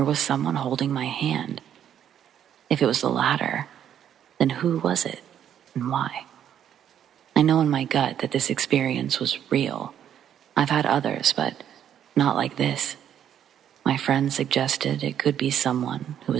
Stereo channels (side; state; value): left; quieter; 9.7 dB